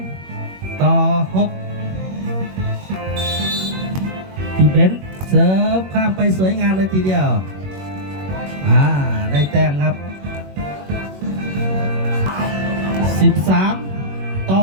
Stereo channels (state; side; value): late; left; 21 ms